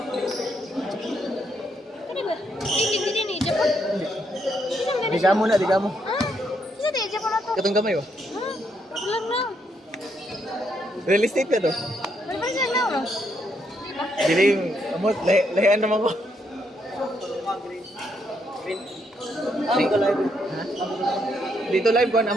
Ano ba? Hindi din i-Japon. Diga mo na, diga mo. Ah, isa din i-Japon na to. Katong kamay oh. Ah, paglang na. Real estate ka to. Ano ba siya na? Diba? Diling, amot, lahian naman ko. Ha? Dito live ko,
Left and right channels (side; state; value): both; normal; correlation 0.75